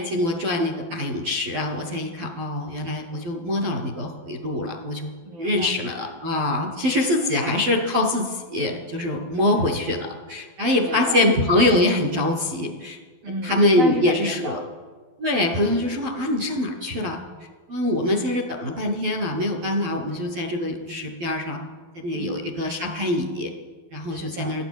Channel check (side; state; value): left; late; 12 ms